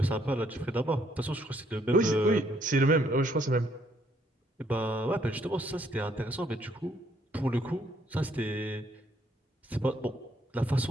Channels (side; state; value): both; normal; correlation 0.69